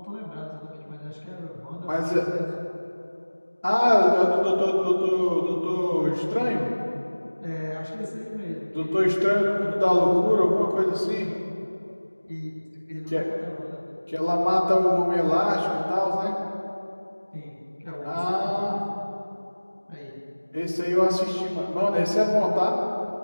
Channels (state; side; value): inverted; both; correlation -1.00